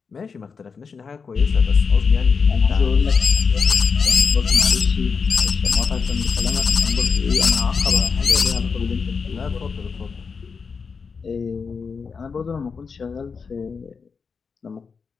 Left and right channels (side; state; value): right; quieter; 5.4 dB